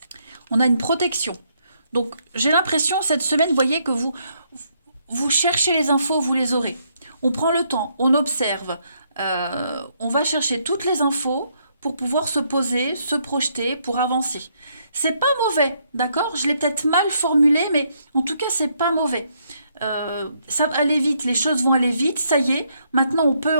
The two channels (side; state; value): both; inverted; correlation -0.73